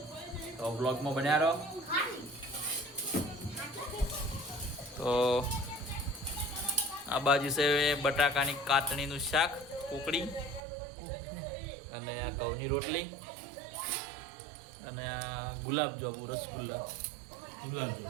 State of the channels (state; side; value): drops out; left; at 10.6 s